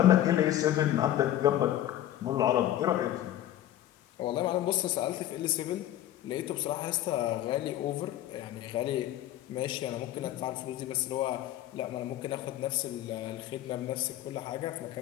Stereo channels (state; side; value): quieter; right; 12.9 dB